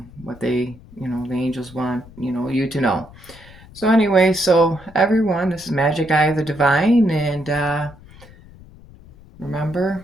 what they, the angels want, you to know. So anyway, so everyone, this is Magic Eye of the Divine, and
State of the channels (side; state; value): left; noise; rumble, 21 dB below the sound